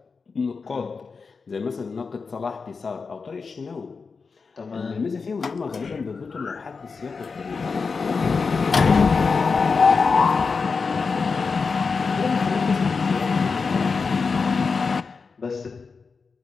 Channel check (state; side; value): quieter; right; 4.9 dB